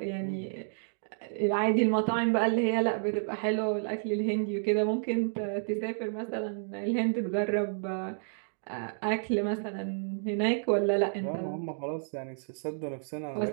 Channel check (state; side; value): silent; left; digital silence